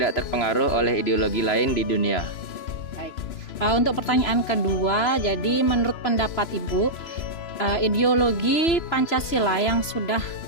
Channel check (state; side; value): late; right; 3.0 ms